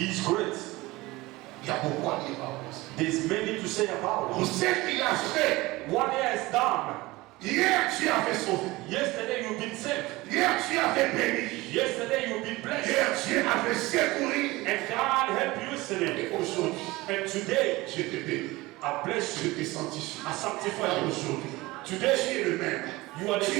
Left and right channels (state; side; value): quieter; left; 20.6 dB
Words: is great. Il y a beaucoup à dire par rapport à ça. There's many to say about Pour it. ce qu'il a fait, What he has done. hier tu as fait sauver. Yesterday you've been saved. Hier tu as fait béni. Yesterday you've been blessed. Hier tu as fait secourir. And God helped you yesterday. Et aujourd'hui, And today je te bénis. I bless Je you. te sanctifie. I sanctify Car you. aujourd'hui, Today tu es le même. you are the Tu